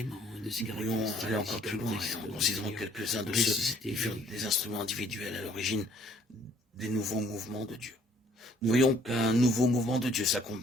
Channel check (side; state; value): both; normal; correlation 0.60